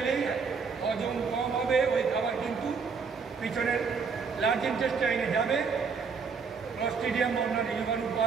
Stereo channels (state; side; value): quieter; left; 5.4 dB